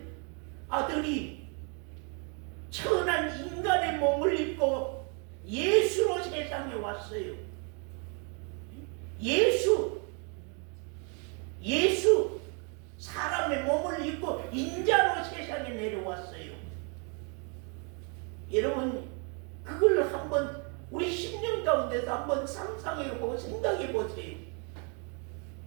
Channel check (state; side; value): quieter; left; 37.1 dB